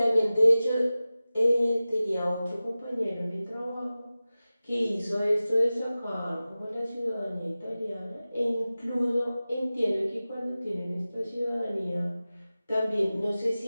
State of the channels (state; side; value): inverted; both; correlation -0.96